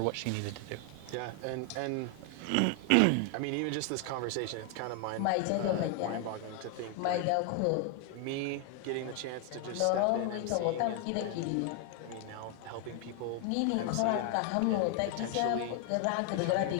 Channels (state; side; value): different; both; correlation 0.00